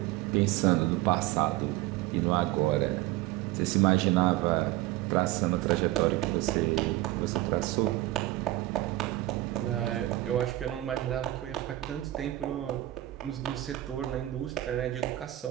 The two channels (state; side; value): quieter; left; 16.3 dB